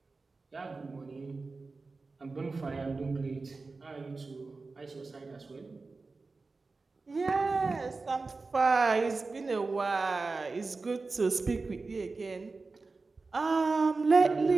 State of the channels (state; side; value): quieter; left; 3.9 dB